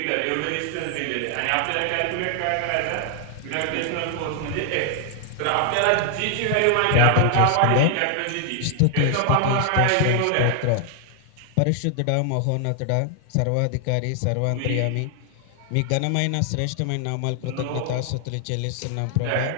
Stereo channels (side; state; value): both; different; correlation 0.00